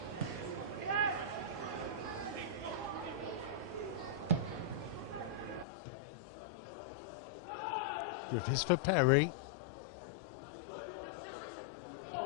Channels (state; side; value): drops out; right; at 5.7 s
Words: Griffiths for Perry.